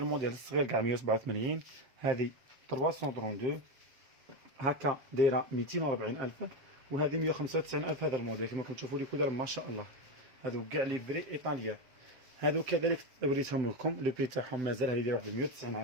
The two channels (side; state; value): left; late; 7.3 ms